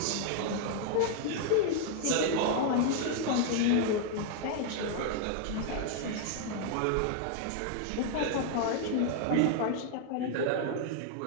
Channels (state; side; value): different; both; correlation 0.00